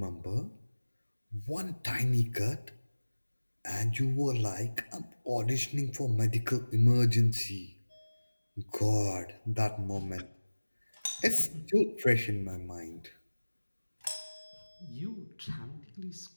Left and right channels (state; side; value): inverted; both; correlation -1.00